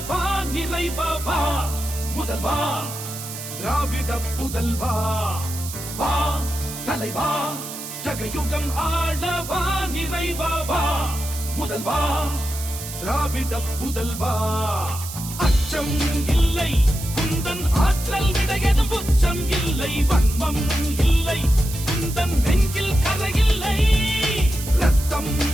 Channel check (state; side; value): noise; right; hiss, 10 dB below the sound